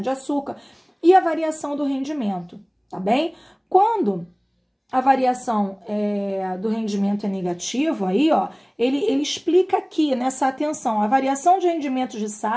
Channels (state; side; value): identical; both; correlation 1.00